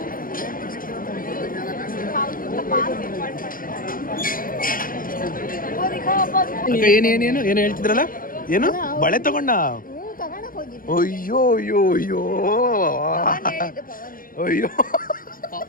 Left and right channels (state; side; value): late; right; 0.41 ms